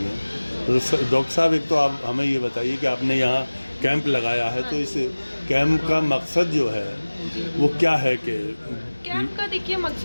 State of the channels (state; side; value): inverted; both; correlation -1.00